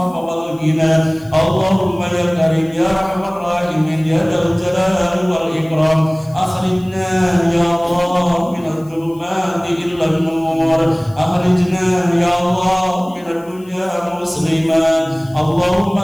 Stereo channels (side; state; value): left; noise; hiss, 27 dB below the sound